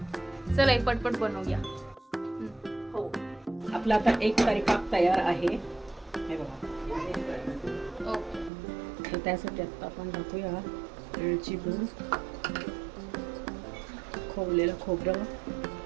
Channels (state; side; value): drops out; left; at 8.5 s